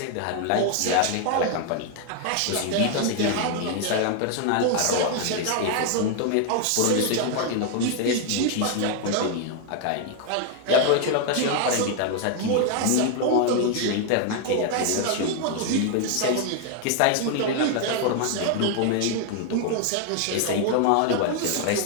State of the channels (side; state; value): both; different; correlation 0.00